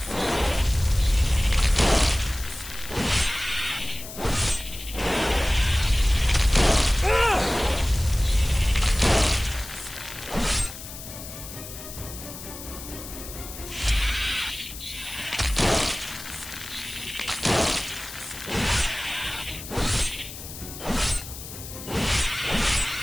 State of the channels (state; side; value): noise; left; hiss, 12 dB below the sound